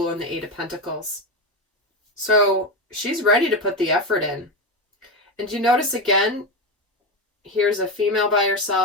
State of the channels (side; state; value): both; normal; correlation 0.15